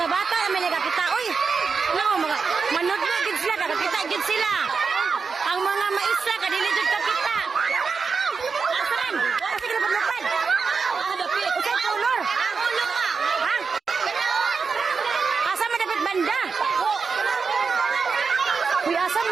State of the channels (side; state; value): left; quieter; 5.1 dB